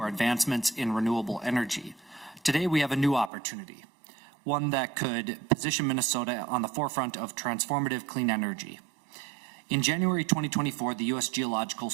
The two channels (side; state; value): left; drops out; at 3.3 s